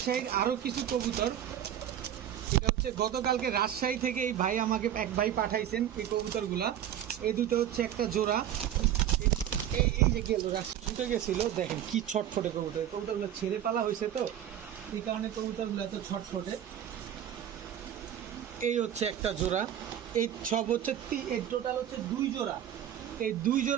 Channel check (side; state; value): left; quieter; 10.6 dB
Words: আরও কিছু কবুতর। এটা হচ্ছে গতকালকে রাজশাহী থেকে এই ভাই আমাকে এক ভাই পাঠাইছেন এই কবুতরগুলা। এই দুটো হচ্ছে একটা জোড়া। এই যে গেল ছুটে গেছিল, দেখেন কি ছটফটে কবুতর। কবুতরগুলো ছেড়ে পালা হয়েছে, তো এই কারণে কবুতরগুলো এত ছটফটে। এই হচ্ছে একটা জোড়া। এই সব হচ্ছে এই টোটাল হচ্ছে 2 জোড়া। এই 2